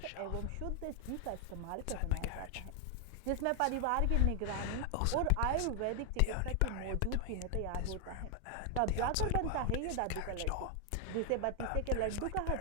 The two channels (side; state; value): both; different; correlation 0.00